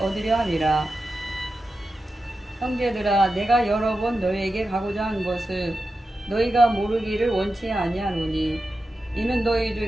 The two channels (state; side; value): normal; both; correlation 0.91